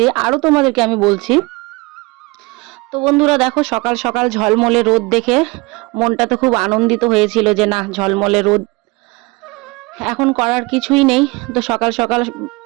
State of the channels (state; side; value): quieter; left; 25.0 dB